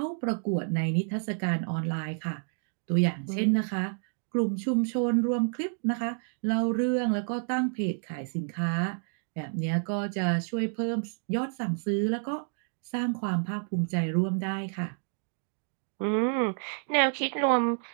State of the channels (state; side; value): silent; left; 58 dB below the other